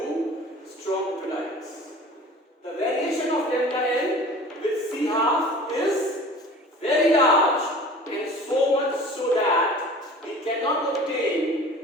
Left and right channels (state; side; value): normal; both; correlation 0.43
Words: strong electrolytes. The variation of lambda n with C half is very large, and so much so that we cannot obtain